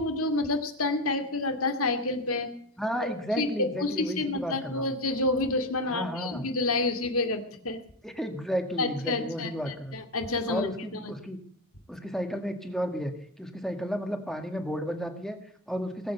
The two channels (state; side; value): normal; both; correlation 0.18